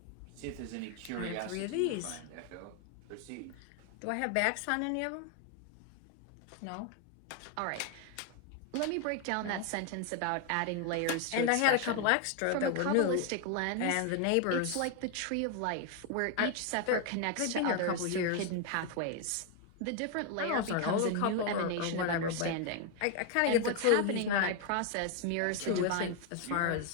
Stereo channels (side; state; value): both; different; correlation 0.01